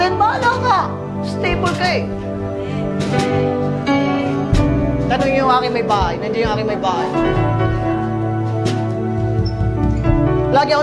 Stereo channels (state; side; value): identical; both; correlation 1.00